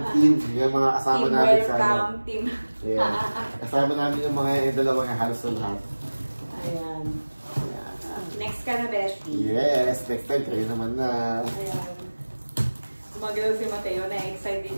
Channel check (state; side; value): inverted; both; correlation -1.00